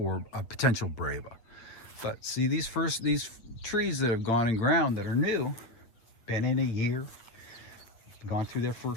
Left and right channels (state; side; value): late; right; 8.9 ms